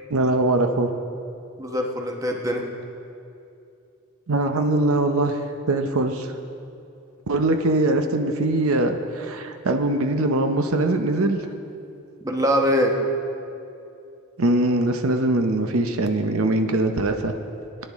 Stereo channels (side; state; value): both; normal; correlation 0.26